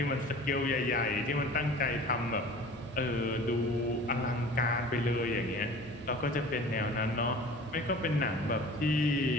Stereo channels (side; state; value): both; normal; correlation 0.42